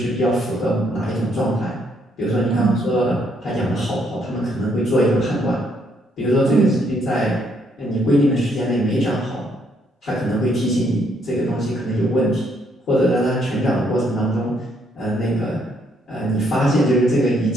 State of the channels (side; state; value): both; normal; correlation 0.71